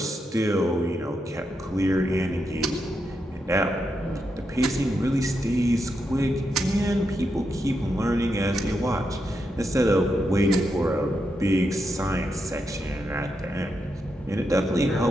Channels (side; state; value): both; normal; correlation 0.84